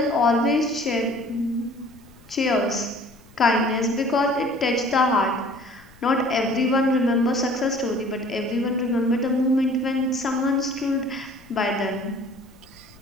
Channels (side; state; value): left; noise; rumble, 26 dB below the sound